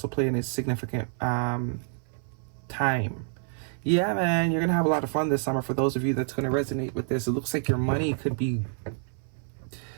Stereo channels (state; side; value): silent; left; 57 dB below the other